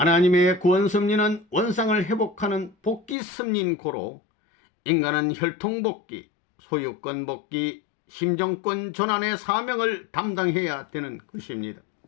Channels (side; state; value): right; drops out; at 3.2 s